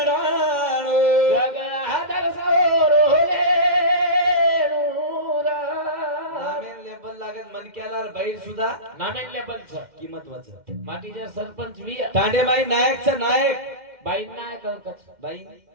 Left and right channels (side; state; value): left; late; 2.1 ms